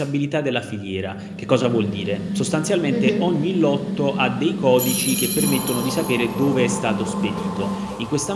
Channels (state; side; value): identical; both; correlation 1.00